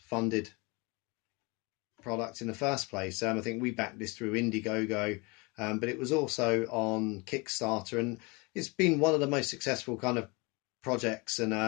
product in the first place. I think we backed this through Indiegogo, but it was also on Kickstarter, and it's been one of the most successful kind of projects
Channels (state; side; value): quieter; right; 27.9 dB